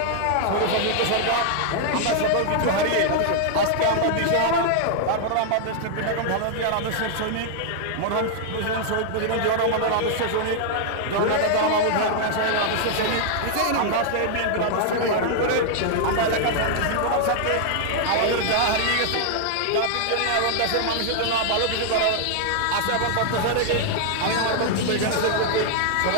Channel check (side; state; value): both; different; correlation -0.01